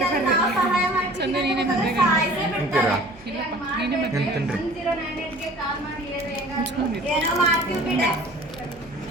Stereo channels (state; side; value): noise; right; hum, 24 dB below the sound